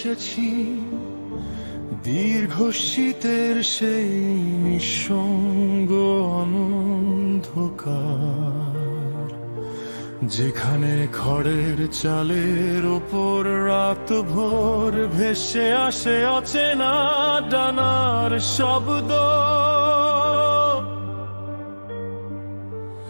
দীর্ঘ শীতের সেই নিঃসঙ্গ অন্ধকার, যেখানে খড়ের চালের ওপর রাত ভোর ভেসে আসে অচেনা ডানার শব্দ।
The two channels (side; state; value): both; inverted; correlation -1.00